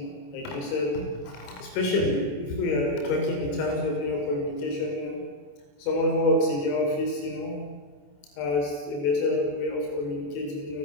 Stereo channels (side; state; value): right; late; 28 ms